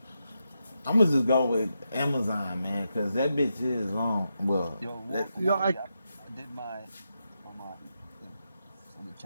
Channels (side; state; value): both; inverted; correlation -0.86